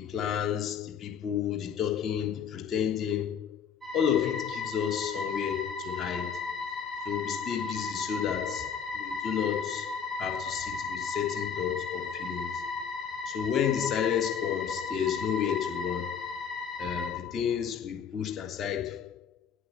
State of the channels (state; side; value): quieter; right; 7.2 dB